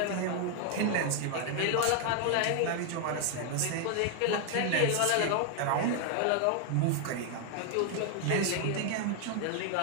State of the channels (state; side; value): different; both; correlation 0.00